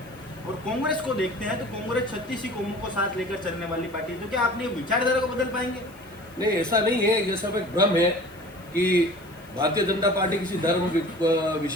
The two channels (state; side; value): noise; left; hiss, 26 dB below the sound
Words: और कांग्रेस को देखते हैं तो कांग्रेस 36 ही कौमों को साथ लेकर चलने वाली पार्टी है। तो क्या आपने विचारधारा को बदल पाएंगे? नहीं, ऐसा नहीं है। ये सब एक भ्रम है कि भारतीय जनता पार्टी किसी धर्म